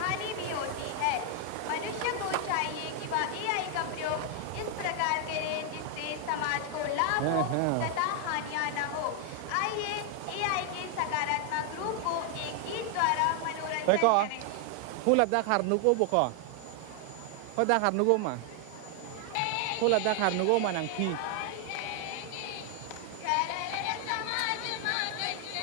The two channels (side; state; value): both; different; correlation 0.00